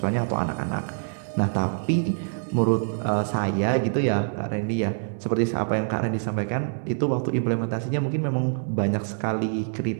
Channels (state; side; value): silent; left; 61 dB below the other